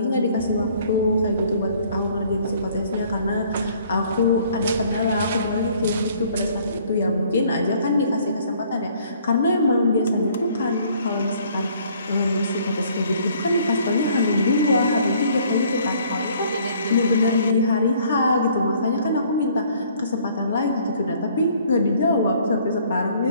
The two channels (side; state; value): both; inverted; correlation -0.59